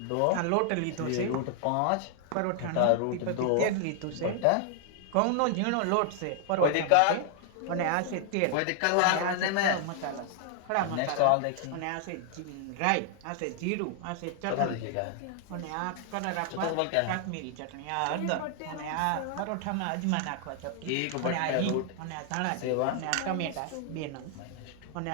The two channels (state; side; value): different; both; correlation 0.00